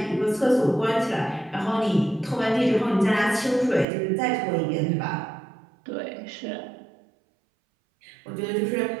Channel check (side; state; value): left; drops out; at 3.9 s